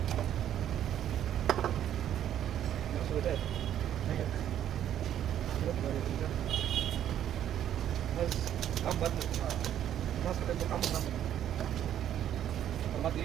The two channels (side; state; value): left; quieter; 10.7 dB